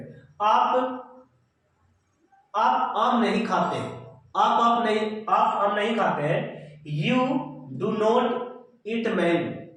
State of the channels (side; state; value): both; identical; correlation 1.00